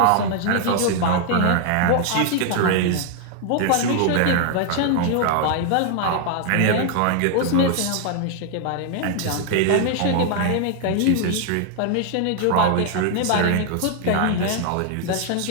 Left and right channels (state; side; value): different; both; correlation 0.00